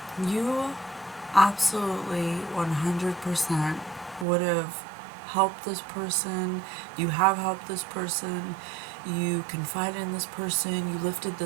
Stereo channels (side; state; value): left; drops out; at 4.2 s